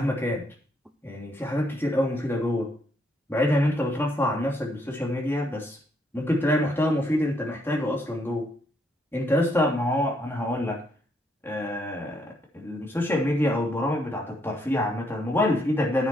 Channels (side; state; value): both; normal; correlation 0.73